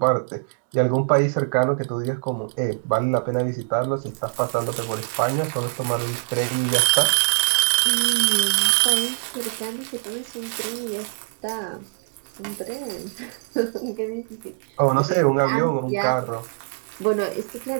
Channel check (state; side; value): silent; left; digital silence